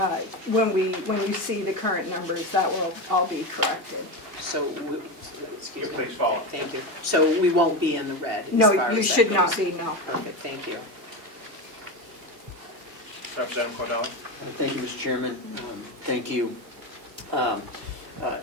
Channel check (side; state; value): left; late; 2.7 ms